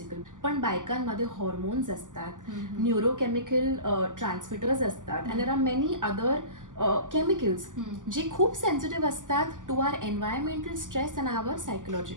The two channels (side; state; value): left; late; 0.87 ms